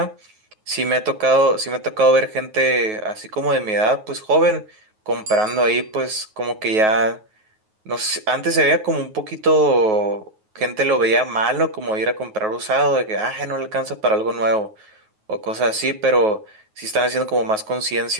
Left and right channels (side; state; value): left; late; 9.4 ms